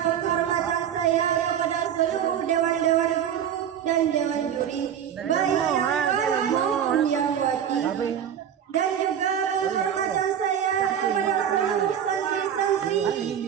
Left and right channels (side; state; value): left; quieter; 9.1 dB